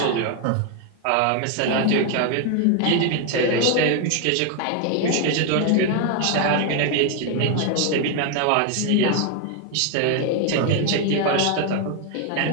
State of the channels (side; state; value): both; different; correlation 0.01